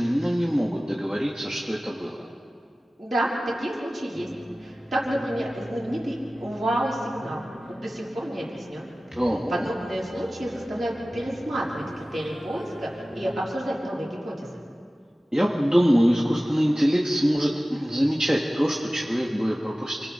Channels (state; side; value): normal; both; correlation 0.97